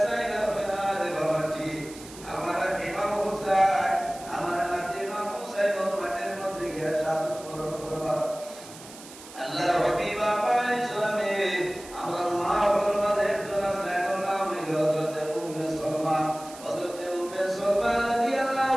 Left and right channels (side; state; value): right; noise; hiss, 17 dB below the sound